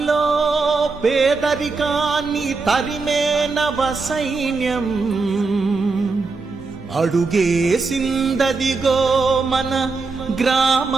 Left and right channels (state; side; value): quieter; left; 4.1 dB